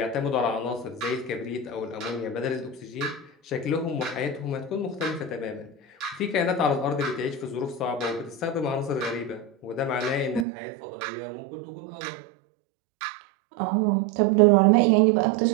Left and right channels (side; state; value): left; drops out; at 10.5 s